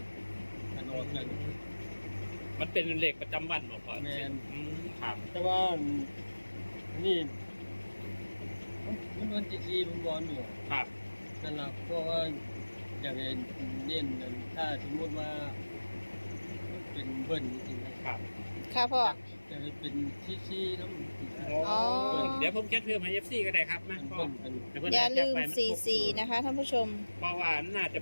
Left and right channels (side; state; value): both; inverted; correlation -1.00